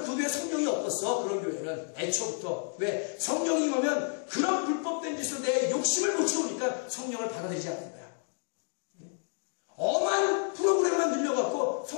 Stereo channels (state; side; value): silent; right; 58 dB below the other